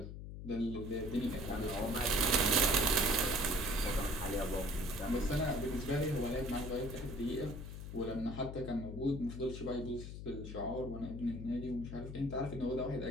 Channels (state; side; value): noise; left; hum, 9 dB below the sound